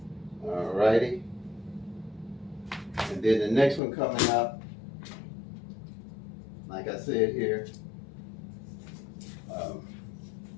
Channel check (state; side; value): drops out; right; at 3.8 s